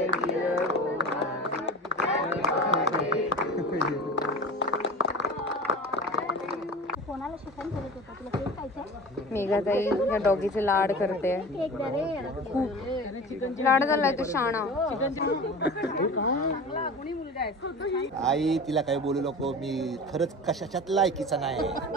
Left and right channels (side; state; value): both; normal; correlation 0.34